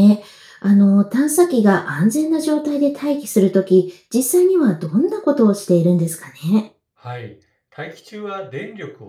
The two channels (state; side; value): identical; both; correlation 1.00